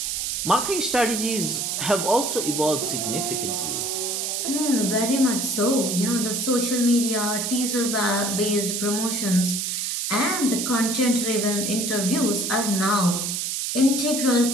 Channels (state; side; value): noise; right; hiss, 1 dB below the sound